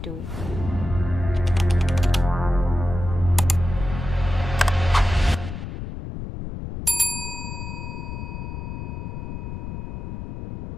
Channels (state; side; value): noise; left; rumble, 6 dB below the sound